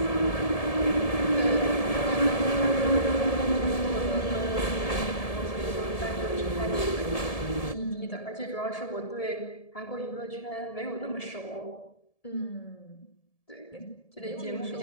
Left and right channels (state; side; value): late; right; 1.7 ms